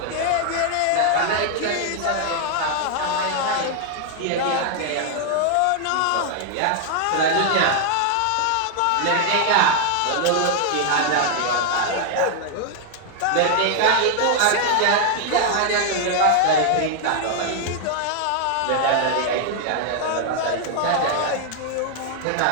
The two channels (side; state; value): both; different; correlation 0.00